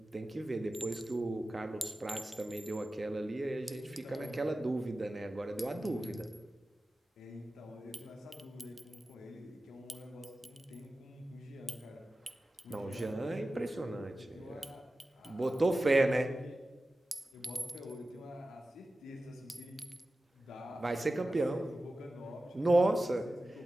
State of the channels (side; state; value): both; normal; correlation 0.95